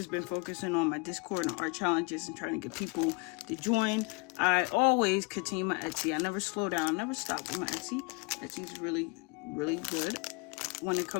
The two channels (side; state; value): right; quieter; 29.4 dB